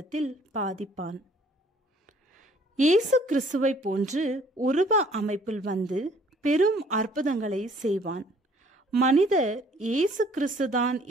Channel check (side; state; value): both; normal; correlation 0.58